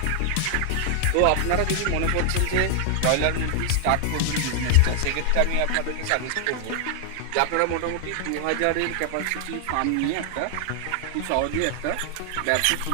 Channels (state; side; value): different; both; correlation 0.00